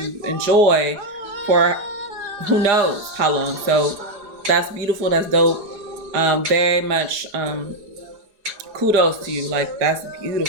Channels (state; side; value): late; left; 4.9 ms